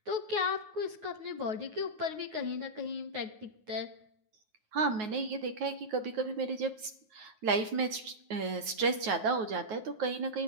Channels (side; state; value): left; late; 9.4 ms